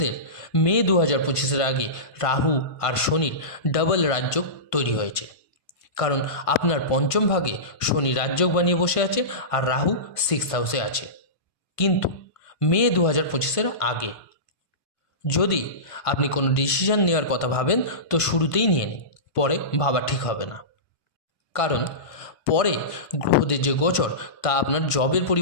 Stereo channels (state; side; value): late; right; 1.5 ms